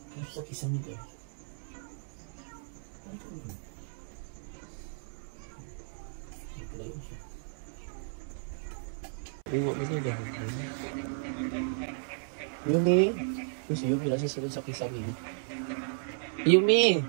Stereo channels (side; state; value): left; silent; 55 dB below the other